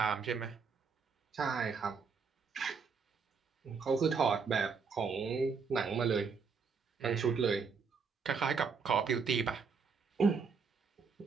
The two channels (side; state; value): left; quieter; 5.4 dB